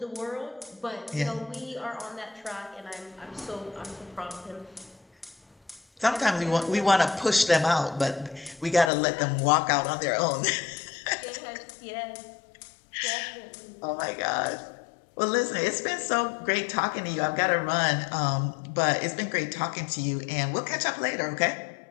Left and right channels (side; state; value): right; drops out; at 8.9 s